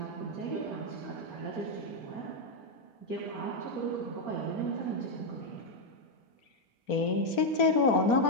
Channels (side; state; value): right; late; 4.4 ms